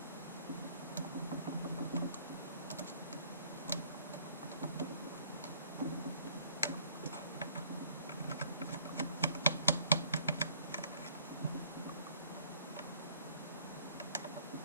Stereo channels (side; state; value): both; inverted; correlation -0.59